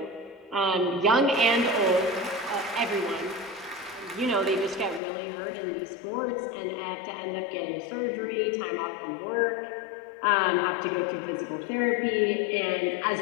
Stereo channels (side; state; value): right; drops out; at 5.0 s